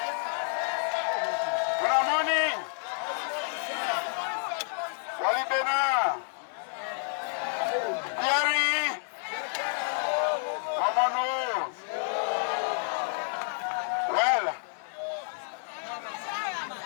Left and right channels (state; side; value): silent; right; 58 dB below the other